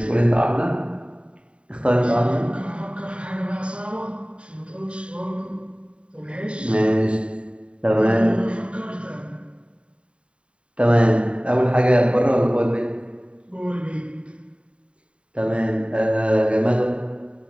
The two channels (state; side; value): late; left; 0.058 ms